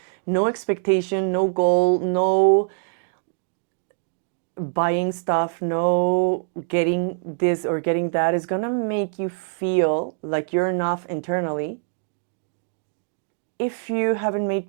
no expectation, no goal, no buying stuff, no getting this or getting that is going to make you feel like you're enough internally if you haven't made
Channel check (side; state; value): left; silent; digital silence